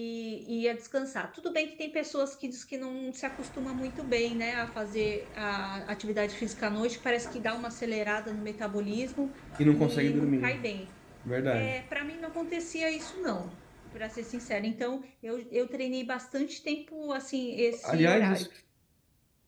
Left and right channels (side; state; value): both; identical; correlation 1.00